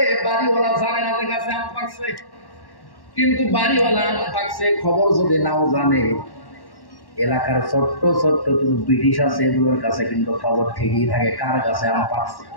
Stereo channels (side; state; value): right; late; 1.1 ms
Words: বাড়িওয়ালা জানে না যে গাছে আম পাকছে। কিন্তু বাড়িওয়ালা আম পাকছে খবর যদি নাও জানে, এলাকার ছোট্ট ছোট্ট ব্রিটিশ আছে, এগুলোর কাছে কিন্তু খবর ঠিকই থাকে কার গাছে আম পাকছে।